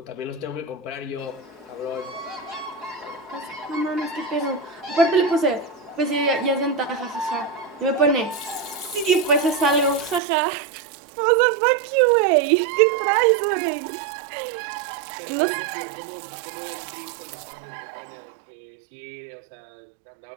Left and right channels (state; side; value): drops out; left; at 10.2 s